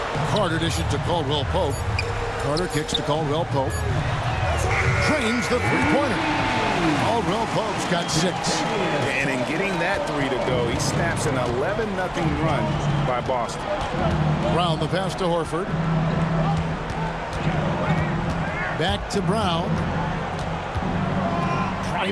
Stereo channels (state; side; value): identical; both; correlation 1.00